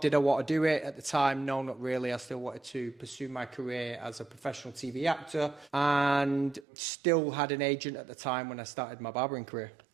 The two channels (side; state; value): left; drops out; at 6.7 s